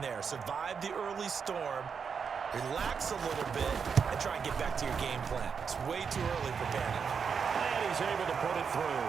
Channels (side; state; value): left; quieter; 6.2 dB